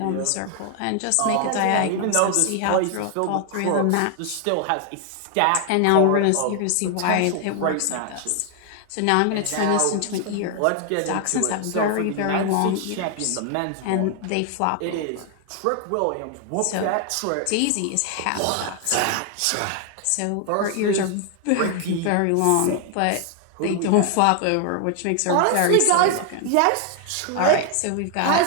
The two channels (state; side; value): different; both; correlation 0.00